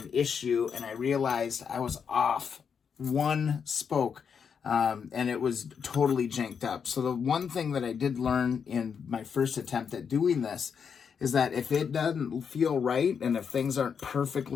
issue, and I realized I was off one spoke, and it was totally janked up. So the one thing that I did learn in my first attempt at doing this is that if it doesn't feel right, and if things aren't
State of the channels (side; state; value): right; quieter; 6.7 dB